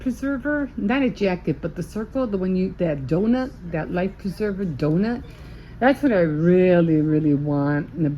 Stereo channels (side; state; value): both; identical; correlation 1.00